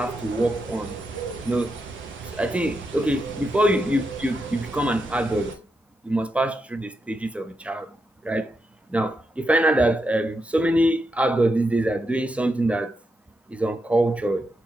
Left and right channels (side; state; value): both; normal; correlation 0.84